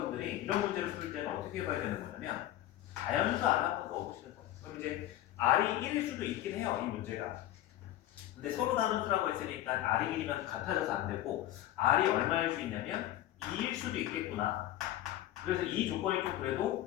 이런 문제를 풀 때는 어떻게 해봐야 되는 거냐면 자연수 R 한번 넣어보시는 거예요. 그럼 이제 R이 1일 수도 있긴 해요. 이 문제가. 근데 서로 다른 수라고 했으니까 R이 1이면 같아져서 안 되고 R이 얼마일 수 있냐면 2일 수도 있겠구나. 그래서 이 조건이 좀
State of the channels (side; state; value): right; quieter; 13.6 dB